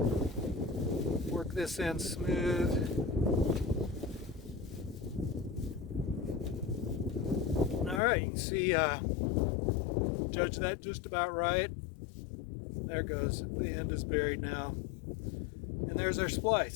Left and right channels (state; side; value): drops out; right; at 8.0 s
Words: Work this end smooth. Alright, you can see, judge that just about right. There it goes. The end is buried now. And there's our